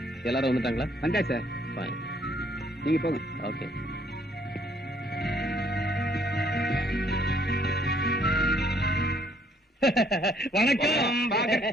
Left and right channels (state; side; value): normal; both; correlation 0.65